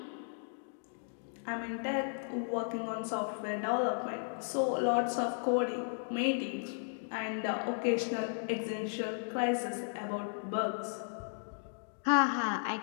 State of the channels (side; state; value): right; silent; digital silence